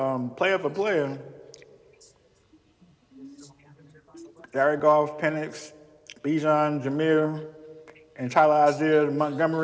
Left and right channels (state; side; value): identical; both; correlation 1.00